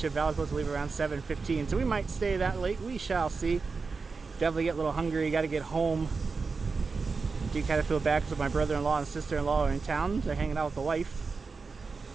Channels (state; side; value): quieter; left; 4.6 dB